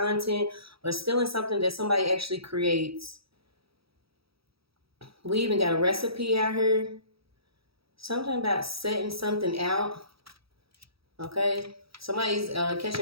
or stealing something that somebody actually creates. We even got a recipe out here. Something about setting something out. Okay, somebody's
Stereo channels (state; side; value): late; left; 0.76 ms